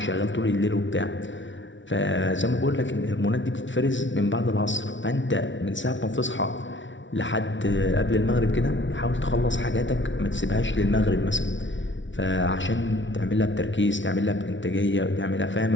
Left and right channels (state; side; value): late; right; 0.55 ms